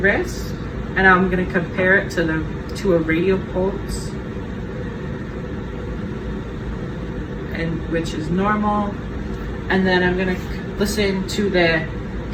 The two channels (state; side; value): identical; both; correlation 1.00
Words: And I'm gonna compare it to a radial pulse, and which is normal. And then I'm gonna listen to the